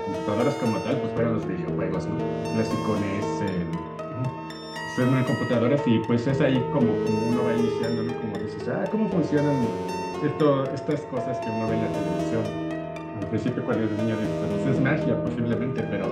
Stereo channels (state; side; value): identical; both; correlation 1.00